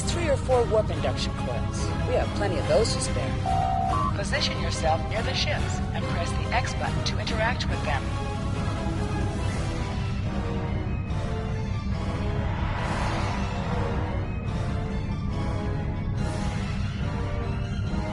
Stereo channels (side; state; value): both; identical; correlation 1.00